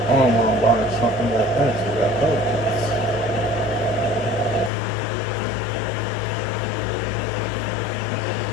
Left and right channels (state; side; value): drops out; right; at 4.7 s